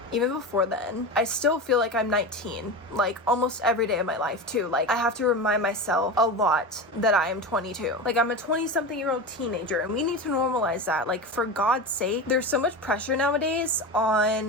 Even before then, I still feel like I'm 19, like almost every day of my life too. Like I have to remind myself a lot that I am 22. Like I'm a 20-something-year-old teenager, and we need to normalize that. Like, for God's sake, there's so much pressure nowadays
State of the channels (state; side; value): normal; both; correlation 0.24